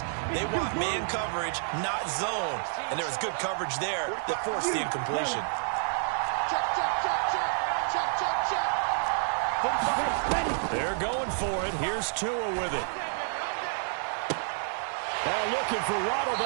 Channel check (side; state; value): left; silent; 55 dB below the other